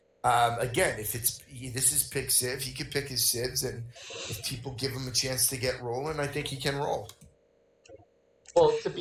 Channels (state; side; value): identical; both; correlation 1.00